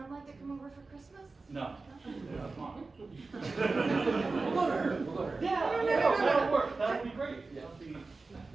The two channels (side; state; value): left; quieter; 3.8 dB